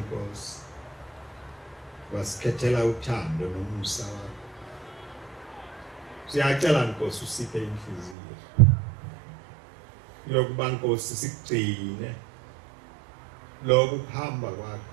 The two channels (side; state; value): left; drops out; at 8.2 s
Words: wasikhethela uthando nomusa wakho. Siyacela Nkosi usiphe inhliziyo yokuba Nkosi sikugcine lokho kuhamba kwakho,